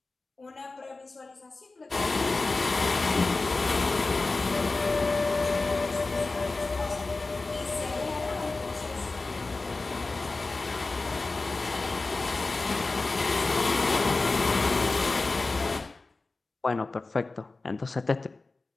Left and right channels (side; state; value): right; quieter; 3.5 dB